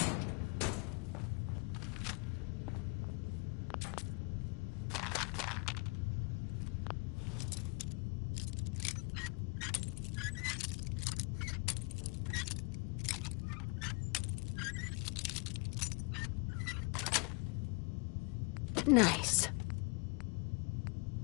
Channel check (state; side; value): quieter; right; 29.9 dB